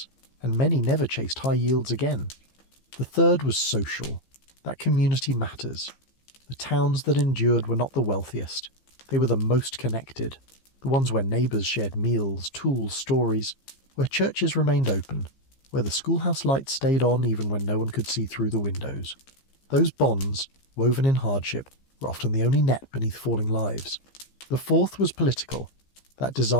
and many never chased high yields again. The third was social. That community matters. The towns that endured were not the wealthiest. They were the most connected. The ones where neighbours shared meals, tools, stories, where churches remained open, where the schoolhouse lights stayed on even when no one could see through the windows. Those bonds, woven in hardship, were often the only net beneath falling lives. The fourth was political. That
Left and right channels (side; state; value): right; late; 15 ms